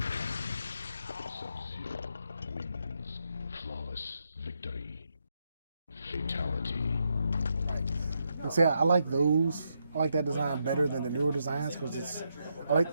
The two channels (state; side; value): inverted; both; correlation -0.80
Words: Sub-Zero wins. Flawless victory. Fatality. Right. And see, I like those. I like that design better than the newer designs because I